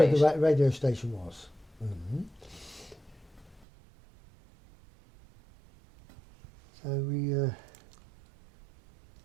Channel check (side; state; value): left; drops out; at 3.7 s